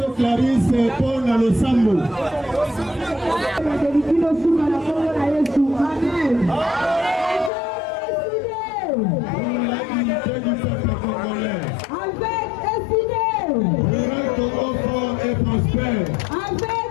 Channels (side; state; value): right; drops out; at 7.5 s